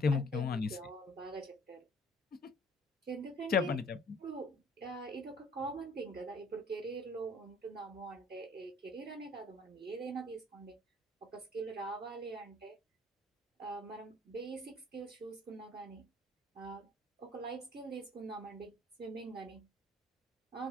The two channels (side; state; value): both; normal; correlation 0.56